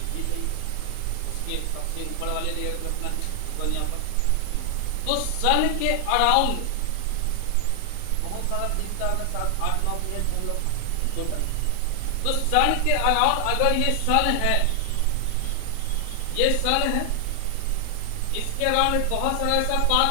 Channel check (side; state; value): both; different; correlation 0.00